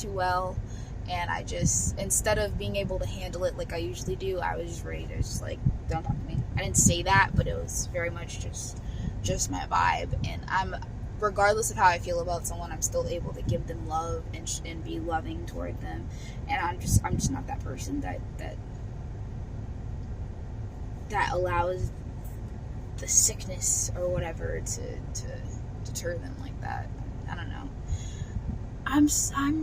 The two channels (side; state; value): both; identical; correlation 1.00